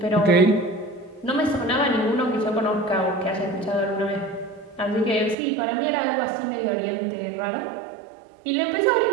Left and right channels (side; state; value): left; drops out; at 5.4 s